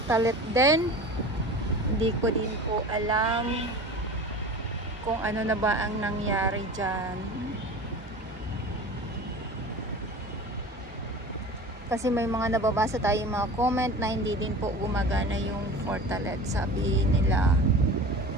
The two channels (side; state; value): both; normal; correlation 0.36